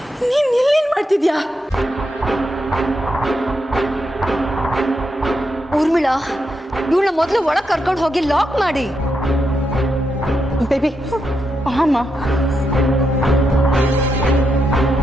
ನೀನ್ ಇಲ್ಲೇನ್ ಮಾಡ್ತಿದ್ಯಾ? ಊರ್ಮಿಳಾ, ಇವಳನ್ನ ಮೊದಲು ಒಳಗೆ ಕರ್ಕೊಂಡು ಹೋಗಿ ಲಾಕ್ ಮಾಡಿ. ಬೇಬಿ ಅಮ್ಮ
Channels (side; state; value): both; normal; correlation 0.83